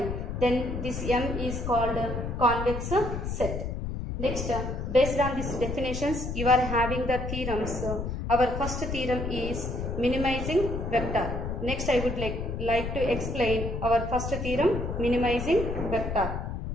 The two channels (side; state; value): left; noise; rumble, 4 dB below the sound